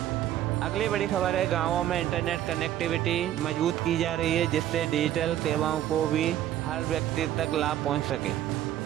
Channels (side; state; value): left; quieter; 12.1 dB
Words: अगली बड़ी खबर है, गांवों में इंटरनेट कनेक्टिविटी मजबूत की जा रही है, जिससे डिजिटल सेवाओं को भी हर व्यक्ति तक लाभ पहुंच सके।